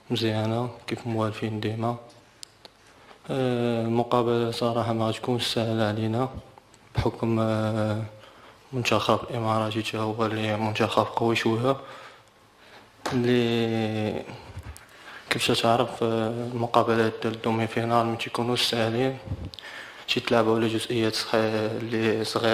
مزيانة كيف موالفين ديما. المقابلة صراحة ما غتكونش سهلة علينا بحكم منتخب الإماراتي تا هو اللي منتخب قوي شوية، اللي كيف تعرف المقابلات ديال الدومي فينال ما تيكونوش ساهلين، تيتلعبوا على جزئيات اللي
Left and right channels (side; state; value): both; identical; correlation 1.00